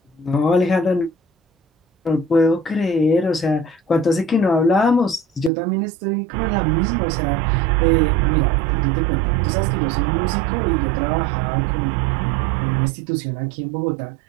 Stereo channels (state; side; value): drops out; left; at 5.5 s